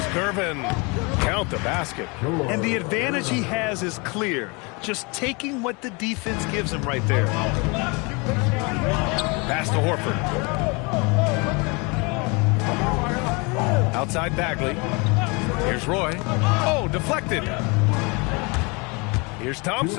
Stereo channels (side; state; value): right; quieter; 29.3 dB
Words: Gervin. Count the basket. And the advantage he has is clear. Just taking what the defense gives him right there. Pass to Horford. Outside Bagley. Here's Roy. Oh, deflected. Here's